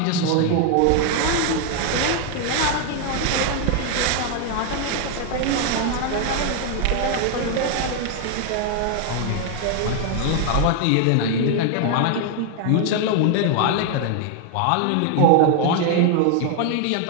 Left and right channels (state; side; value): different; both; correlation 0.00